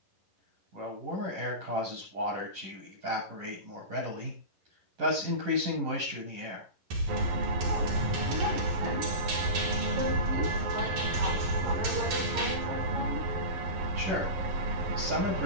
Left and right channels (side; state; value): left; late; 11 ms